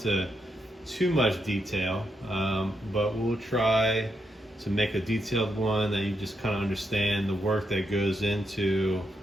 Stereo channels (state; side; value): normal; both; correlation 0.82